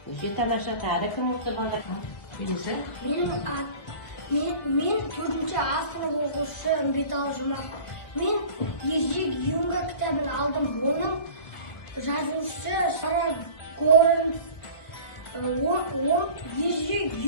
Өте тамаша. Тағы кім осы балалар? Мен 4-ші сынып оқушысы Үмбетал Жұмақ. Мен Ежик Юнга кітабын алдым. Оның жазушысы Сара Горенс. Ол Ежик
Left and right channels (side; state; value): right; late; 1.4 ms